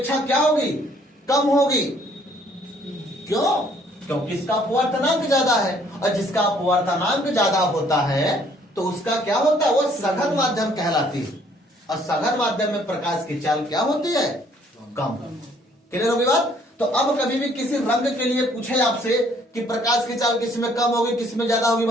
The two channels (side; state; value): both; normal; correlation 0.62